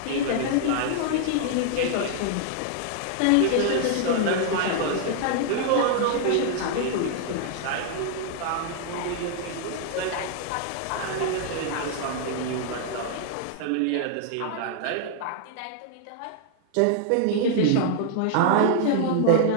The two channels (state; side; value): different; both; correlation -0.01